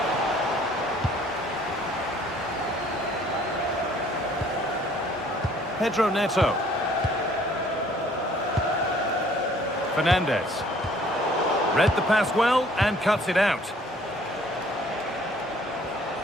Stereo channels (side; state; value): both; normal; correlation 0.58